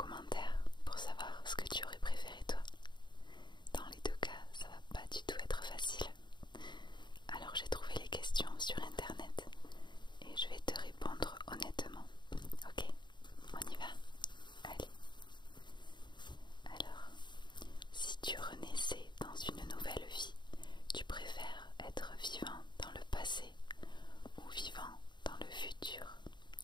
pour savoir ce que tu aurais préféré toi. Dans les deux cas, ça va pas du tout être facile. Alors j'ai trouvé les questions sur internet et je vais te répondre honnêtement. Ok, on y va? Allez. Alors, si tu renaissais dans une nouvelle vie, tu préfères être vivant dans le passé ou vivant dans le futur?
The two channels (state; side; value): late; right; 0.22 ms